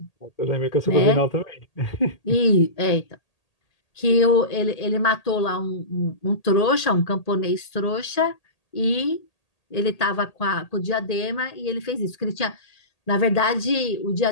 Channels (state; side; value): late; right; 1.8 ms